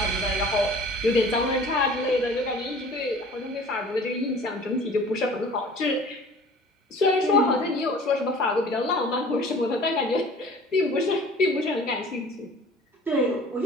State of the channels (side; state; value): both; normal; correlation 0.46